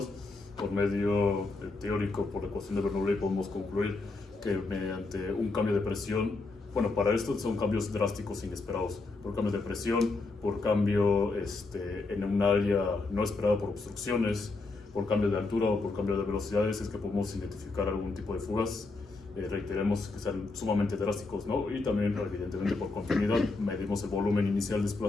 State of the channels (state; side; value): quieter; right; 3.5 dB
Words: Por medio teórico, por la ecuación de Bernoulli, podemos concluir que mediante un cambio de presión, bueno, para esto son cambios drásticos inesperados, por cambio de presión, por cambio en un área no esperada por obstrucciones, por cambio de altura o por cambio de velocidades, es que podemos identificar algún tipo de fugas. Reiteremos que sean sumamente drásticos, ¿no? Y también, evidentemente, por continuidad, medimos el volumen inicial